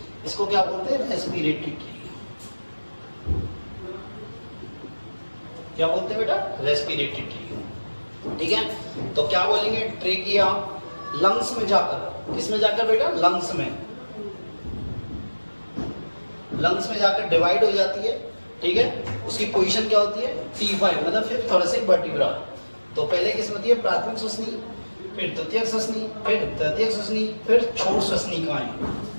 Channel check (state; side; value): inverted; both; correlation -1.00